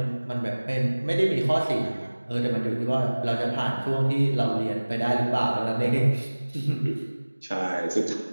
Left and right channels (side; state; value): both; inverted; correlation -1.00